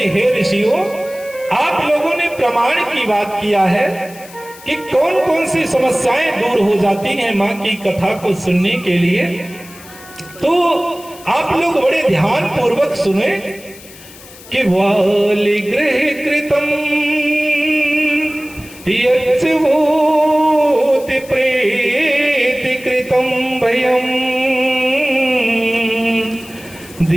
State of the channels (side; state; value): left; noise; hiss, 20 dB below the sound